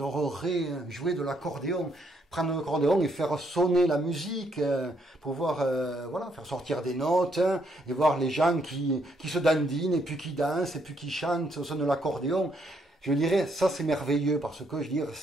jouer de l'accordéon, prendre l'accordéon et faire sonner la musique, pouvoir voilà, faire sortir des notes et voir les gens qui se dandinent et puis qui dansent et puis qui chantent au son de l'accordéon. Je dirais, ça c'est merveilleux parce que je dirais,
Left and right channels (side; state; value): both; normal; correlation 0.73